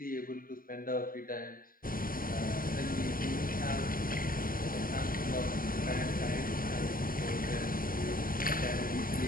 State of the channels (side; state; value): right; late; 0.41 ms